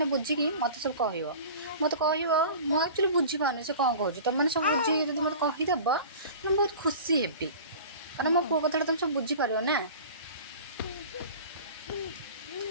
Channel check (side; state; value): both; inverted; correlation -0.39